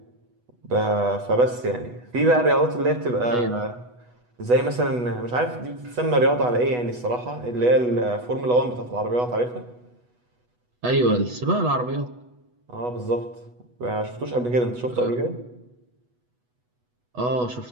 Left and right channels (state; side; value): late; left; 8.1 ms